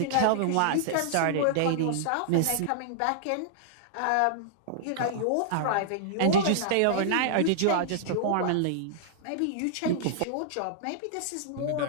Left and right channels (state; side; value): different; both; correlation -0.01